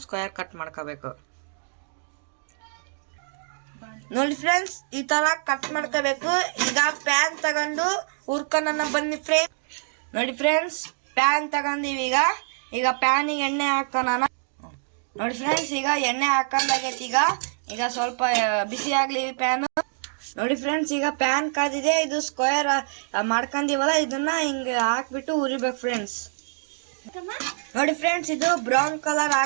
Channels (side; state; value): left; silent; digital silence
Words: ಸ್ಕ್ವಯರ್ ಕಟ್ ಮಾಡ್ಕೋಬೇಕು. ನೋಡಿ ಫ್ರೆಂಡ್ಸ್, ಈ ತರ ಕಟ್ ಮಾಡ್ಕೋಬೇಕು. ಈಗ ಪ್ಯಾನ್ ತಗೊಂಡು ಹುರ್ಕೊಂಡ ಬನ್ನಿ ಫ್ರೆಂಡ್ಸ್. ನೋಡಿ ಫ್ರೆಂಡ್ಸ್, ಪ್ಯಾನ್ ತಗೊಂಡಿವಿ. ಈಗ ಪ್ಯಾನಿಗೆ ಎಣ್ಣೆ ಹಾಕೋಣ. ನೋಡಿ ಫ್ರೆಂಡ್ಸ್, ಈಗ ಎಣ್ಣೆ ಹಾಕೊಂಡಾಗೈತಿ. ಈಗ ಸ್ವಲ್ಪ ಬಿಸಿ ಆಗ್ಲಿ ಪ್ಯಾನ್. ನೋಡಿ ಫ್ರೆಂಡ್ಸ್, ಈಗ ಪ್ಯಾನ್ ಕಾದಿದೆ. ಇದು ಸ್ಕ್ವೇರ್ ಮಾಡ್ಕೊಂಡಿವಲ್ಲ, ಇದನ್ನ ಹಿಂಗ ಹಾಕ್ಬಿಟ್ಟು ಉರಿಬೇಕು ಫ್ರೆಂಡ್ಸ್. ನೋಡಿ ಫ್ರೆಂಡ್ಸ್, ಇದು ಬ್ರೌನ್ ಕಲರ್